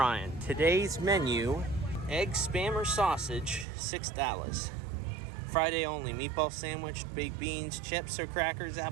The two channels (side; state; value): left; drops out; at 3.7 s